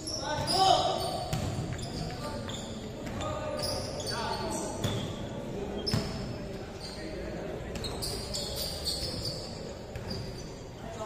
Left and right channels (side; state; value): both; identical; correlation 1.00